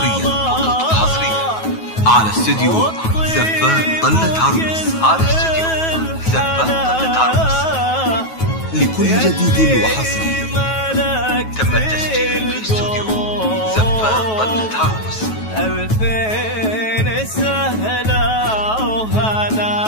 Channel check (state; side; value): late; right; 9.3 ms